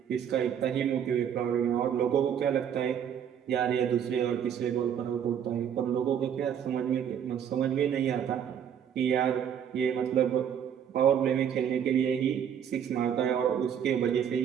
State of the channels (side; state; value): left; quieter; 8.7 dB